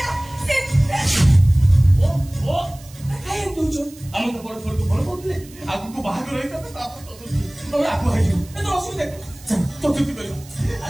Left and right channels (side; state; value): right; noise; hiss, 22 dB below the sound